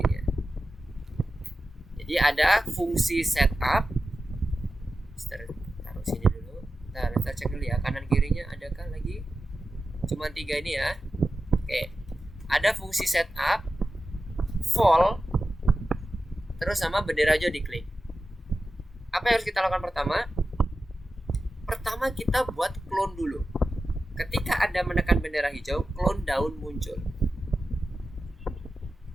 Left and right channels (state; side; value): normal; both; correlation 0.93